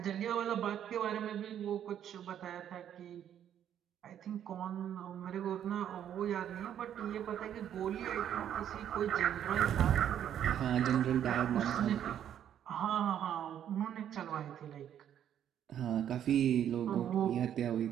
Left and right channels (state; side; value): quieter; left; 10.0 dB